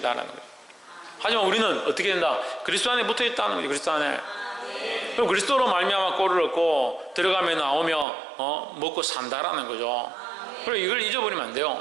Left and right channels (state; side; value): drops out; left; at 8.1 s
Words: 거예요. 하지만 우리는 어떻게 된다? 그리스도 안에 붙어 있다는 거죠. 그리스도 안에. 그럼 그리스도로 말미암아 꼴을 얻고 들어가며 나오며 먹고 산다라는 거죠. 그리고 이걸 잊어버리면 안